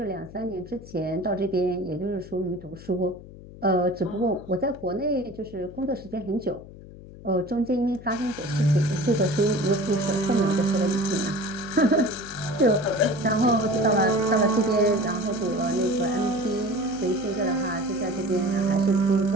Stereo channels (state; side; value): noise; left; hum, 17 dB below the sound